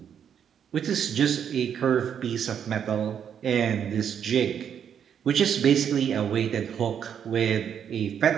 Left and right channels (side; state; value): left; quieter; 8.3 dB